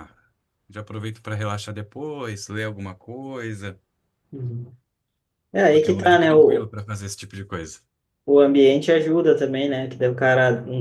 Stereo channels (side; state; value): both; identical; correlation 1.00